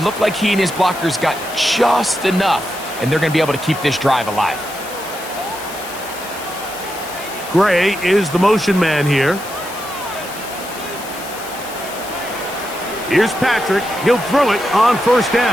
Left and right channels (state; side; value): noise; left; hiss, 14 dB below the sound